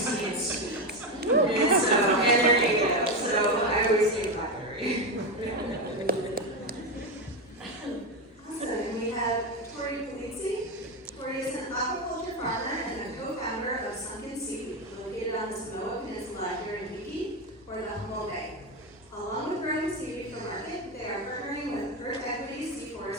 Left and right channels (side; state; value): both; normal; correlation 0.13